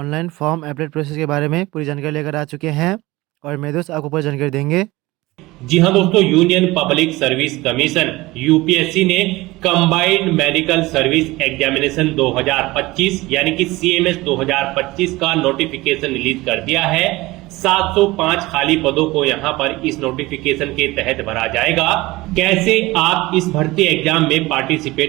form apply process के बारे में पूरी जानकारी लेकर आ चुके हैं और मेरे दोस्त आपको पूरी जानकारी देंगे। जी हाँ दोस्तों, union public service commission UPSC ने कंबाइंड मेडिकल सर्विस एग्जामिनेशन 2025 यानी कि सीएमएस 2025 का नोटिफिकेशन रिलीज कर दिया है। 705 खाली पदों को यहां पर इस नोटिफिकेशन के तहत भरा जाएगा। कैसे आप इस भर्ती एग्जाम में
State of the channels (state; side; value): quieter; left; 20.1 dB